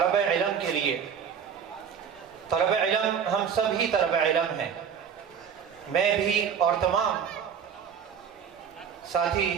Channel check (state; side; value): quieter; left; 7.5 dB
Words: علم کے لیے۔ طلب علم ہم سب ہی طلب علم ہیں، میں بھی اور تمام ساتھی